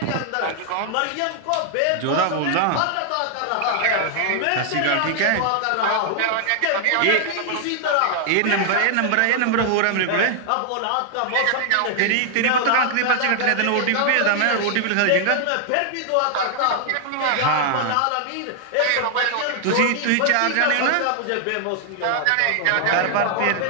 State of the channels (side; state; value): both; different; correlation 0.00